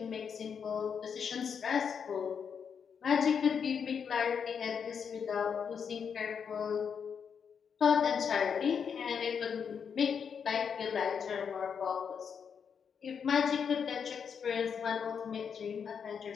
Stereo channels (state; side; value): quieter; right; 6.9 dB